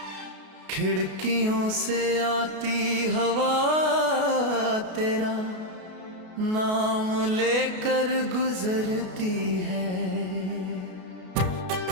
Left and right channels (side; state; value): left; late; 33 ms